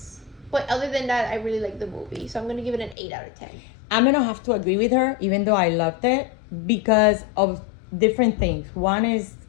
But other than that, I really liked the movie. So I'm going to give it an 8 out of 10. I'm going to have to agree with her, even though I loved it, because of different things. One is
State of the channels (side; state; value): right; drops out; at 3.0 s